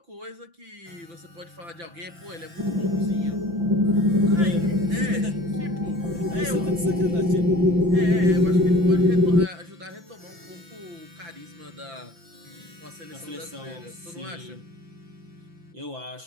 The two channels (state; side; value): late; left; 5.9 ms